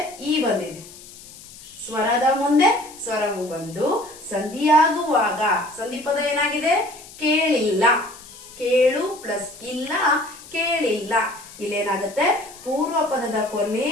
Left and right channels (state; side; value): noise; left; hiss, 18 dB below the sound